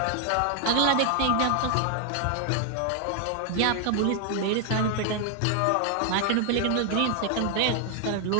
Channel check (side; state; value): both; different; correlation 0.00